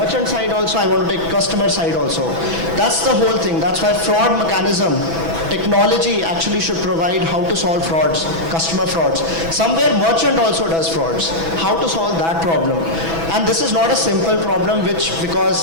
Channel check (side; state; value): left; late; 6.1 ms